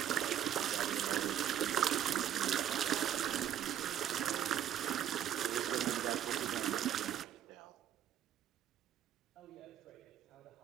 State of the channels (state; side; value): quieter; left; 10.4 dB